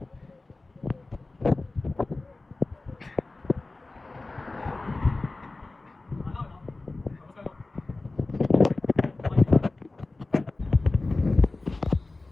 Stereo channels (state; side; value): quieter; right; 3.2 dB